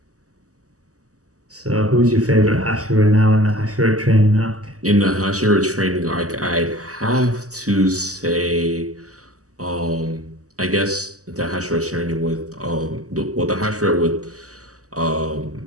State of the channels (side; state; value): left; late; 0.66 ms